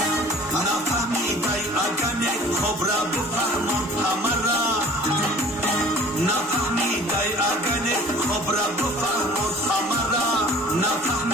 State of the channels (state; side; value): normal; both; correlation 0.47